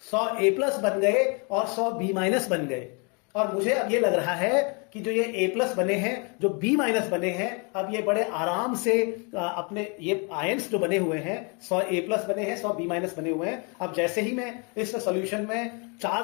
100 ए प्लस बन गए और 100 बी माइनस बन गए। और मुझे अब ये लग रहा है कि जो ये ए प्लस बने हैं, जो बी माइनस बने हैं, अब ये बड़े आराम से अपने ये आयंस जो बने हुए हैं, 100 ए प्लस बने हैं, 100 बी माइनस बने हुए हैं। अब जैसे ही मैं इस सॉल्यूशन में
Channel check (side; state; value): right; quieter; 34.0 dB